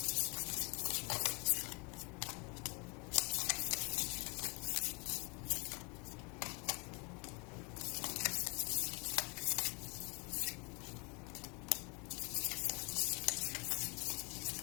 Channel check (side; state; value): right; quieter; 32.0 dB